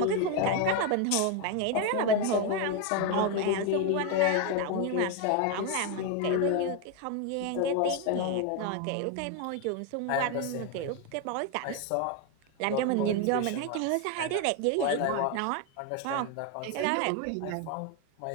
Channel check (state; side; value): different; both; correlation 0.02